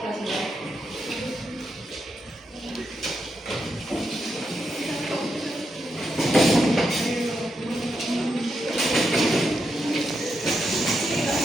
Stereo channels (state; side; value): normal; both; correlation 0.84